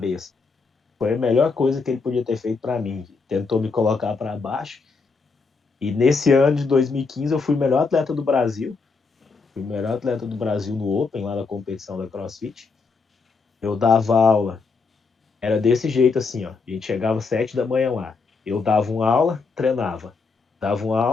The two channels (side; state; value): right; quieter; 4.5 dB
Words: Foi a melhor coisa que ele podia ter feito para mim. Tentou me colocar para baixo. E nesse ano de 2015 eu fui o melhor atleta do Brasil. Fui o melhor atleta do Brasil no Open, lá na competição da CrossFit. Eu dava aula. Era desse jeito assim, ó. A gente chegava às 7 da manhã lá. Eu dava uma aula, treinava. Dava uma